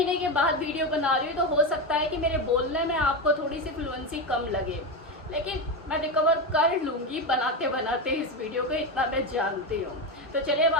के बाद वीडियो बना रही हूँ तो हो सकता है कि मेरे बोलने में आपको थोड़ी सी फ्लुएंसी कम लगे, लेकिन मैं रिकवर कर लूँगी बनाते बनाते इस वीडियो को, इतना मैं जानती हूँ। तो चलिए अब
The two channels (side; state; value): both; normal; correlation 0.15